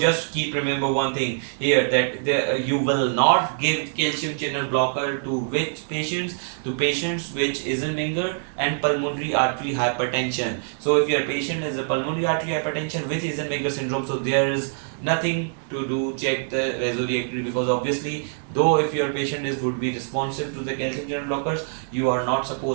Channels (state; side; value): silent; left; 62 dB below the other